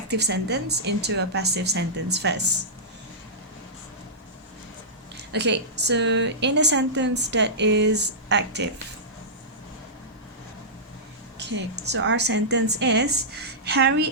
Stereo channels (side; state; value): both; normal; correlation -0.15